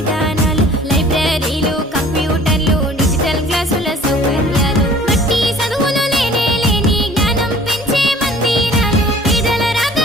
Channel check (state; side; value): normal; both; correlation 0.49